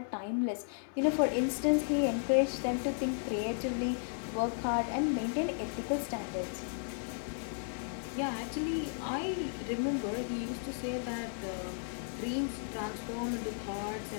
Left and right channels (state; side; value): silent; right; digital silence